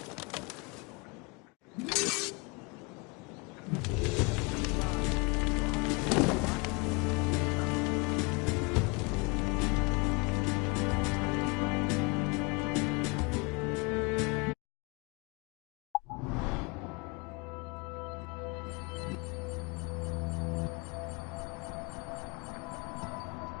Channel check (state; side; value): quieter; right; 29.1 dB